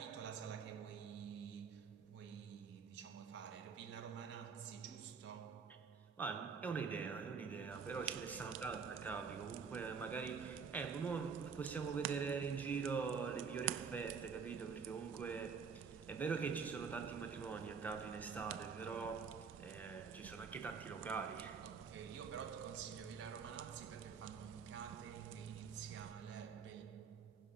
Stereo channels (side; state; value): left; quieter; 5.9 dB